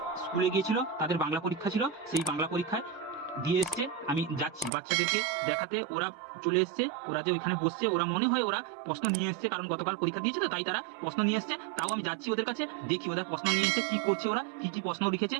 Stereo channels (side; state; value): left; drops out; at 4.7 s